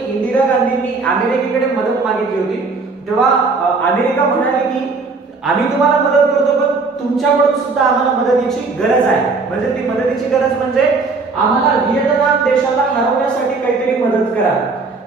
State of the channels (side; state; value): left; quieter; 4.1 dB